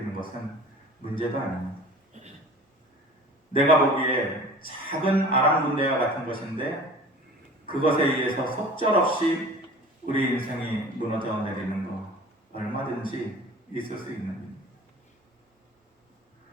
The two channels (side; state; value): both; normal; correlation 0.42